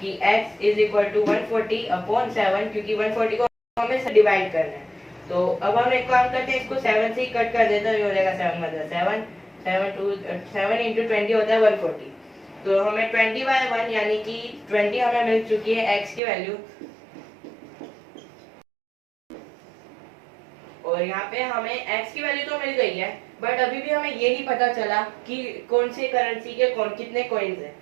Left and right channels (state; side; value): drops out; left; at 16.2 s